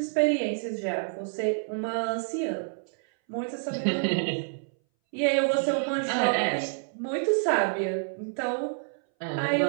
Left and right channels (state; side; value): silent; left; 59 dB below the other